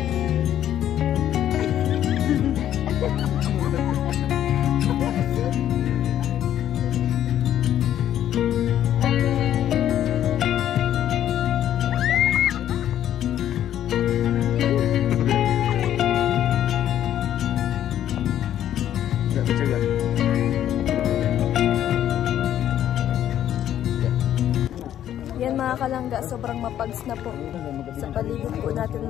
Yan mga kalangga, sobrang mapags na po sa paligid po natin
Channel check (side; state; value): right; quieter; 11.1 dB